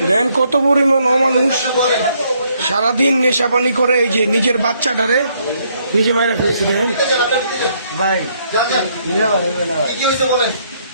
দেন কত পরিমাণ অমানুষ সারাদিন নেশা পানি করে, এই যে নিজের বাচ্চাটারে নিজে মাইরা ফেলছে। দেখেন ভাই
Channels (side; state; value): both; inverted; correlation -0.70